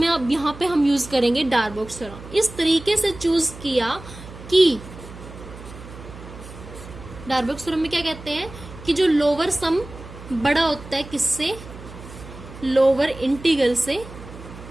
अब यहाँ पे हम यूज करेंगे डार्बोक्स थ्योरम। इस तरीके से चूज किया कि डार्बोक्स थ्योरम में क्या कहते हैं कि जो लोअर सम बड़ा होता है किससे, लोअर इंटीग्रल से,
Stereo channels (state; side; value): noise; right; hum, 15 dB below the sound